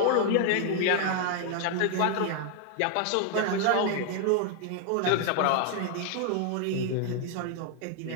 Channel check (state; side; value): different; both; correlation 0.00